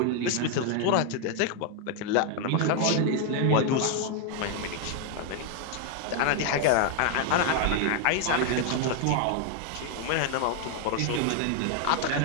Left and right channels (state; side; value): different; both; correlation 0.00